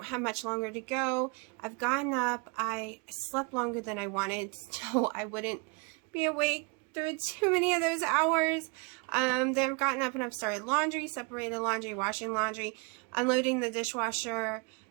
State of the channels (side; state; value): left; quieter; 31.3 dB